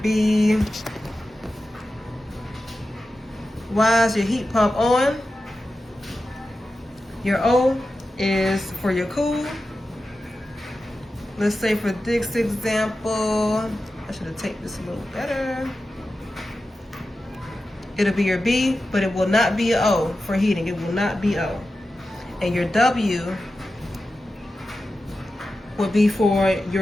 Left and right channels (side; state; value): both; normal; correlation 0.92